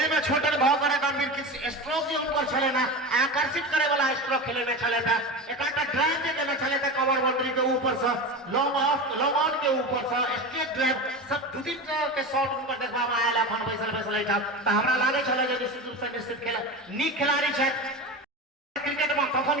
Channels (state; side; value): normal; both; correlation 0.26